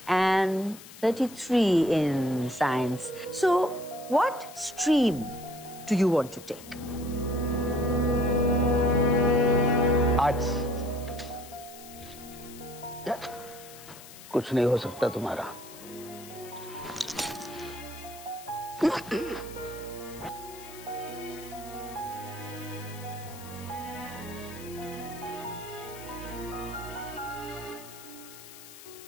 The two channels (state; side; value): noise; left; hiss, 17 dB below the sound